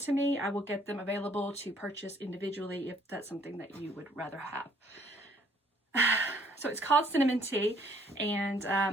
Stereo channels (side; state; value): both; normal; correlation 0.62